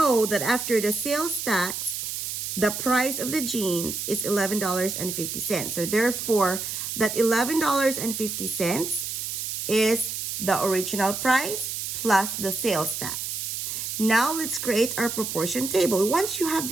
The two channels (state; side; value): noise; right; hiss, 4 dB below the sound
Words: that after the sales tax, the price of the jeans is $11.50. So therefore, that $11.50 is the original price plus the sales tax. Now let's create our proportion table. Once you have